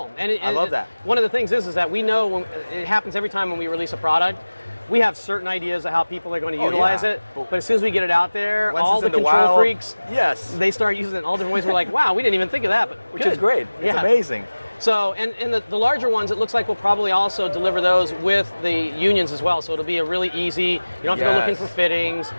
And I love that. One of the things is that we know it happens every time when we release a product. We have certain ideas of how people are going to utilize it, but as soon as we get it out there, all the control freaks, they start using it in all different ways. We're like, wow, we didn't even think of that, but good. Which is great. It's amazing. So, and the larger ones, it looks like we'll probably also deliver those with the unions as well. So it'll be a really easy, you don't have to go looking for fittings,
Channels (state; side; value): inverted; both; correlation -1.00